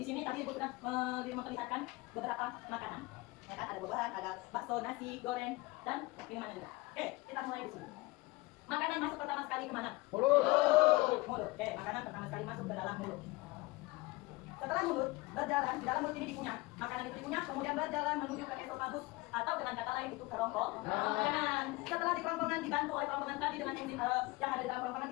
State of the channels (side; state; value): right; quieter; 22.1 dB